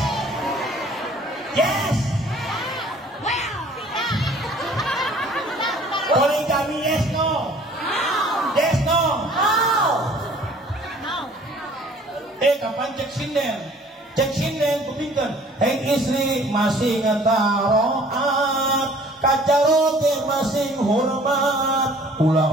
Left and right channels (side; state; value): both; normal; correlation 0.53